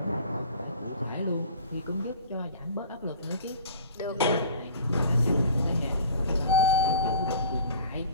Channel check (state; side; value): inverted; both; correlation -0.44